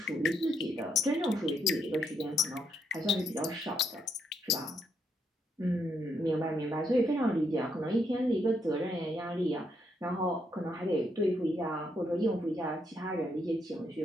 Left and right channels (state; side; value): normal; both; correlation 0.76